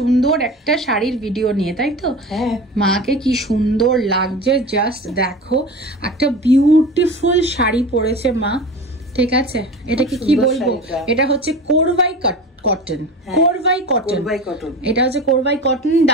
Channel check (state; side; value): normal; both; correlation 0.32